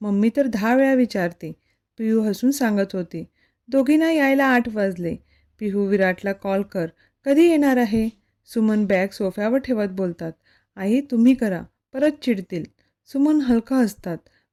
मम्मी तर 10 वेळा विचारते. पिहू हसून सांगत होती. दोघींना यायला 8 वाजले. पिहू, विराटला कॉल कर. कधी येणार आहे? सुमन बॅग सोफ्यावर ठेवत बोलतात. आई, तुम्ही करा, परत चिडतील. सुमन हलका हसतात.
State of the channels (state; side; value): identical; both; correlation 1.00